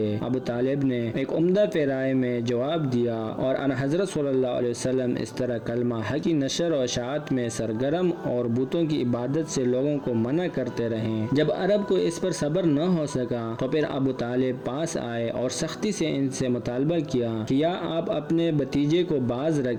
ابو طالب نے ایک عمدہ پیرائے میں جواب دیا اور ان حضرت صلی اللہ علیہ وسلم اس طرح کلمہ حق کی نشر و اشاعت میں سرگرم اور بتوں کی عبادت سے لوگوں کو منع کرتے رہیں۔ جب عرب کو اس پر صبر نہ ہو سکا تو پھر ابو طالب پاس آئے اور سختی سے ان سے مطالبہ کیا کہ یا آپ اپنے بھتیجے کو باز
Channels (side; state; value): both; identical; correlation 1.00